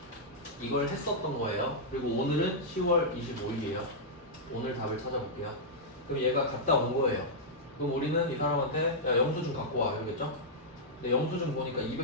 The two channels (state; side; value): normal; both; correlation -0.09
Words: 이걸 했었던 거예요. 그리고 오늘은 10월 25일이에요. 오늘 답을 찾아볼게요. 그럼 얘가 갔다 온 거예요. 그럼 우리는 이 사람한테 야 영수증 갖고 와 이러겠죠? 근데 영수증 보니까